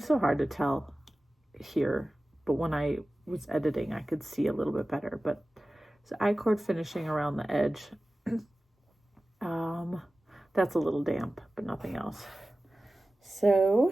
so hard to tell here, but when I was editing, I could see a little bit better. But it's I-cord finishing around the edge. That's a little damp, but nothing else.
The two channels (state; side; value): normal; both; correlation 0.96